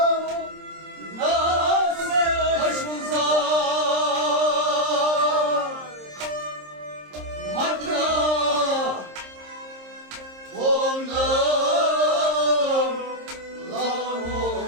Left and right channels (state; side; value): late; left; 26 ms